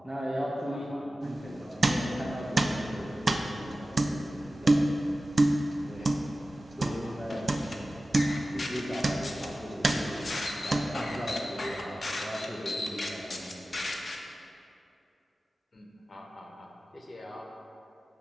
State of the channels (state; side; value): normal; both; correlation 0.95